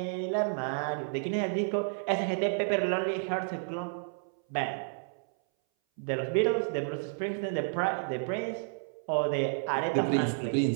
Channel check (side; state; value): left; silent; 57 dB below the other